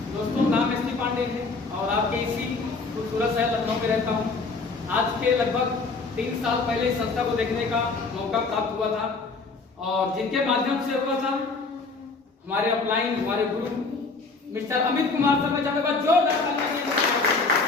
दोस्तों, नाम एसपी पांडे है और आपके इसी खूबसूरत शहर लखनऊ में रहता हूं। आज के लगभग 3 साल पहले इस संस्था को देखने का मौका प्राप्त हुआ था और जिनके माध्यम से हुआ था हमारे अपलाइन, हमारे गुरु मिस्टर अमित कुमार सर, में चाहूंगा जोरदार तालियां।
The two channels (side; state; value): right; quieter; 4.0 dB